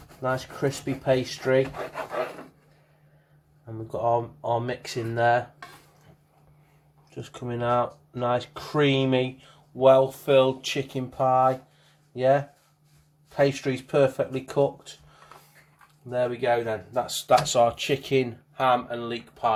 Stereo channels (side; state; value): both; identical; correlation 1.00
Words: nice crispy pastry. And we've got our mix in there. Just coming out, nice creamy, well-filled chicken pie. Yeah, pastry's perfectly cooked. There we go then, that's our chicken, ham and leek